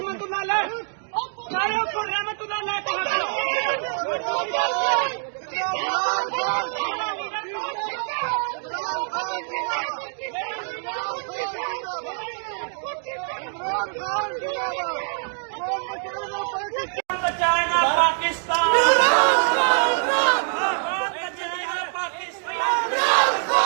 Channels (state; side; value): silent; left; digital silence